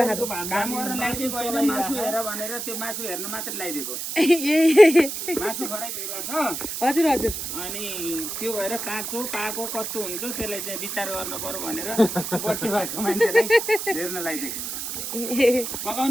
काम गर्न लगाइदिएको होइन, मासु हेर भनेर त्यो मासु हेर्न मात्र लगाइदिएको। मासु फरक भइरहेछ। हजुर हजुर। अनि त्यो भएर काँचो पाको कस्तो हुन्छ त्यसलाई चाहिँ विचार गर्न पर्यो भनेर बर्थडे भएको मान्छेलाई हेर्न लगाइदिएको।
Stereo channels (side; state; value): right; noise; hiss, 5 dB below the sound